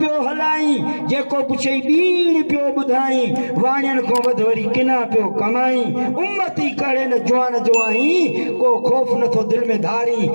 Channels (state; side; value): inverted; both; correlation -1.00